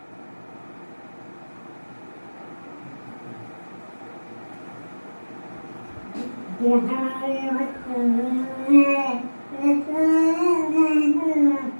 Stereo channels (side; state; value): both; inverted; correlation -1.00